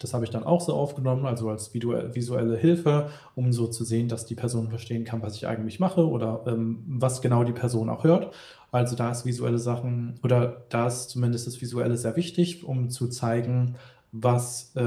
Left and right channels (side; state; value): both; identical; correlation 1.00